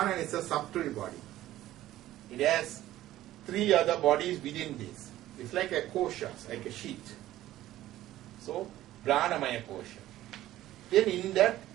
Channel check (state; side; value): quieter; left; 14.4 dB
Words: is a subtle body. It has 3 other bodies within this. It's like a kosha, like a sheet. So, Pranamaya kosha. Then in that,